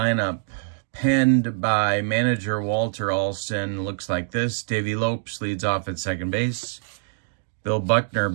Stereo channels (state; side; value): silent; left; digital silence